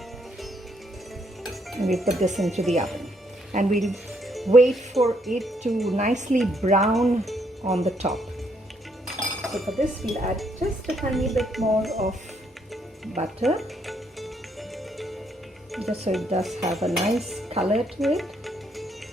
And we put this into the oven, and we'll wait for it to nicely brown on the top. So for this we'll add just a tiny bit more of butter, just so it does have a nice color to it.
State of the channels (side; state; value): both; normal; correlation 0.72